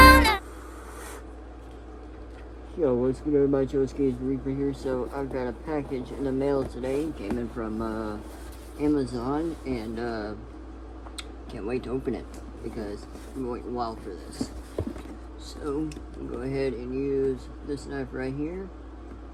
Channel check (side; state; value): both; identical; correlation 1.00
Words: Yo, what's good everybody, Joe's Reaper here. So I've got a package in the mail today. Came in from Amazon, and can't wait to open it because I've been waiting a while for this. So I'll go ahead and use this knife right here.